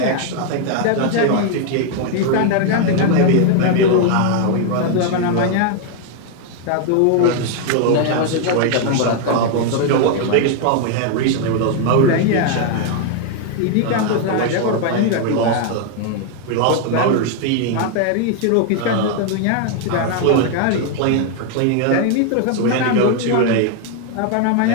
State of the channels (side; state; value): both; different; correlation 0.00